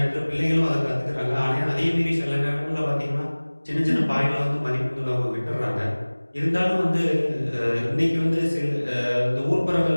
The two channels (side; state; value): both; inverted; correlation -1.00